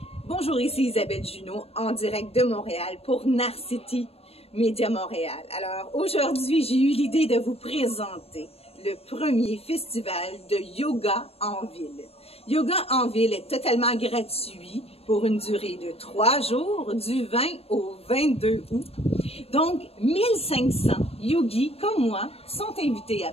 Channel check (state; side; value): late; right; 0.29 ms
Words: Bonjour, ici Isabelle Junot en direct de Montréal pour Narcity Média Montréal. Alors aujourd'hui, j'ai eu l'idée de vous présenter le premier festival de yoga en ville. Yoga en ville est totalement gratuit pour une durée de 3 jours, du 20 au 22 août. Donc, 1500 yogis comme moi sont invités à